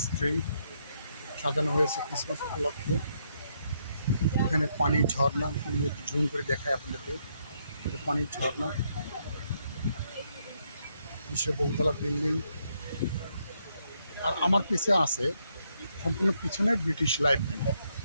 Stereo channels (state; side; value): inverted; both; correlation -0.76